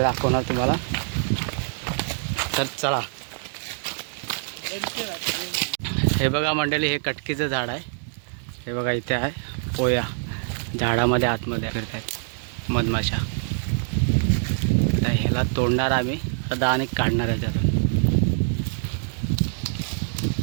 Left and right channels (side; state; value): left; silent; digital silence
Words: दाखवणार तुम्हाला. तर चला. हे बघा मंडळी, हे कटकीचं झाड आहे. हे बघा इथे आहे पोया, झाडामध्ये आतमध्ये फिरतात मधमाशा. तर ह्याला तोडणार आम्ही आता आणि काढणार आहे त्यातून.